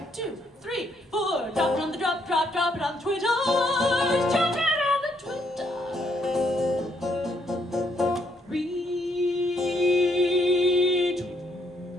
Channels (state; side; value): normal; both; correlation 0.72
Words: 2, 3, 4. Drop it on the drop it on the Twitter. Drop it on the Twitter.